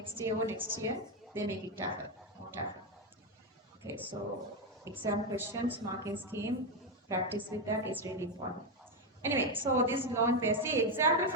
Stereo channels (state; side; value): normal; both; correlation 0.07